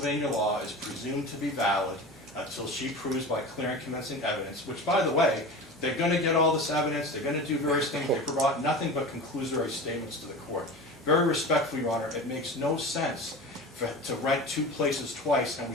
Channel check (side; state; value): both; normal; correlation 0.32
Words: law is presumed to be valid until she proves by clear and convincing evidence, which, by the way, they're going to get all this evidence, they're going to do various things, they provide nothing but conclusory statements to the court. Very respectfully, Your Honor, it makes no sense to rent 2 places twice, and